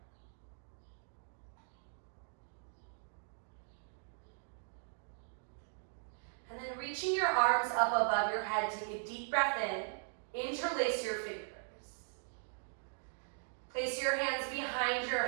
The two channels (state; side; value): silent; left; digital silence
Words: And then reaching your arms up above your head, take a deep breath in, interlace your fingers. Place your hands behind your